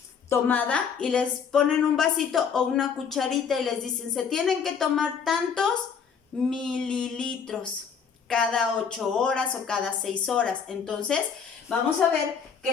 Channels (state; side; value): quieter; right; 6.6 dB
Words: tomada y les ponen un vasito o una cucharita y les dicen, se tienen que tomar tantos mililitros cada 8 horas o cada 6 horas. Entonces, vamos a ver